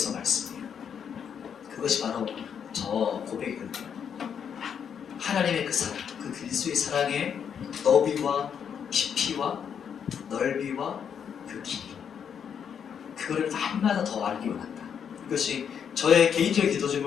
말씀이에요. 그것이 바로 저 고백이거든요. 하나님의 그 사랑, 그 그리스도의 사랑의 너비와 깊이와 넓이와 그 길이, 그거를 날마다 더 알기 원한다. 이것이 저의 개인적인 기도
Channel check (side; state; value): right; quieter; 7.7 dB